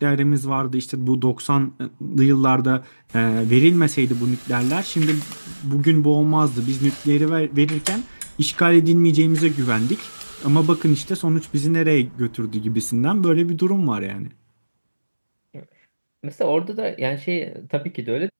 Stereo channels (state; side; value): inverted; both; correlation -1.00